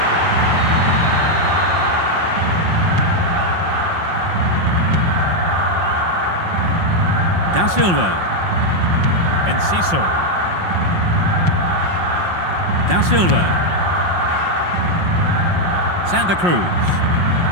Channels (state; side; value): late; left; 5.6 ms